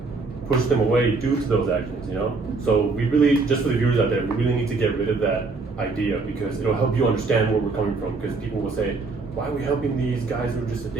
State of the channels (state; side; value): quieter; left; 4.0 dB